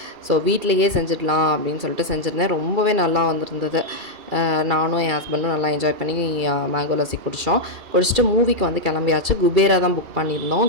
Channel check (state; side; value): late; left; 2.3 ms